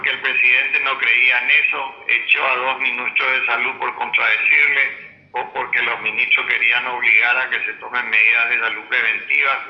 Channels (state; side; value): identical; both; correlation 1.00